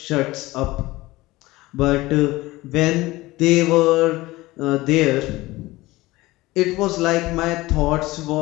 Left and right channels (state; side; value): quieter; right; 19.4 dB